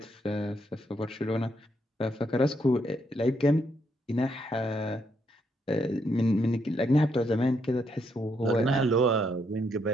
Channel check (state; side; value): normal; both; correlation 0.76